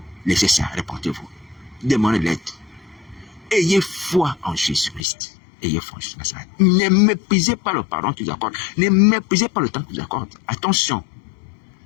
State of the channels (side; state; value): right; drops out; at 5.1 s